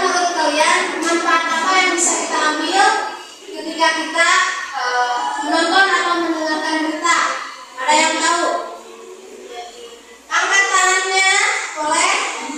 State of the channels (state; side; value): identical; both; correlation 1.00